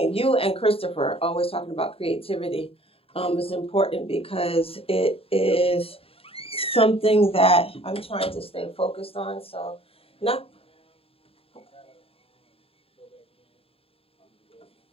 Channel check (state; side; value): late; right; 0.27 ms